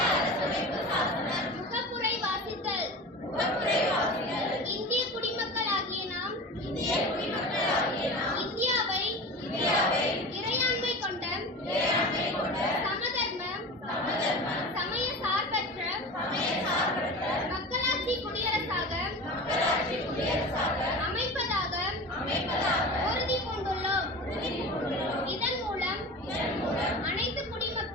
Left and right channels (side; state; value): both; normal; correlation 0.32